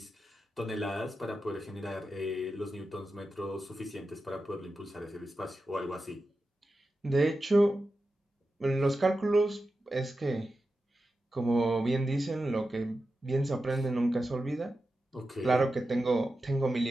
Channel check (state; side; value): normal; both; correlation 0.91